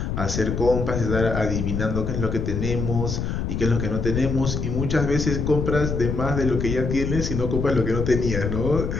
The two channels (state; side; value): noise; left; rumble, 2 dB below the sound